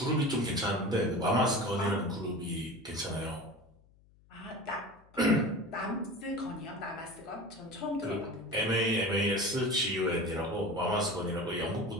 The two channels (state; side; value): noise; left; hum, 29 dB below the sound